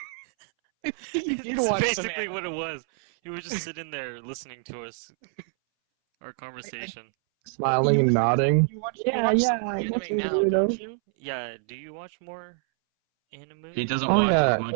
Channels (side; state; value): left; silent; 61 dB below the other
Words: I think you did It's watch some basically anime. what it was. You were just sitting there listening to us, our conversation. Smiling and nodding. You watch Yeah, some more I'm anime watching now, don't Naruto. you? Yeah, do you watch more anime? He doesn't Oh watch as yeah,